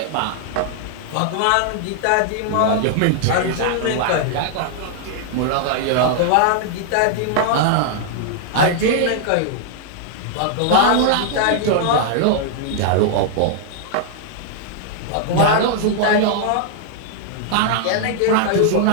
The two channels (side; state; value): both; different; correlation 0.00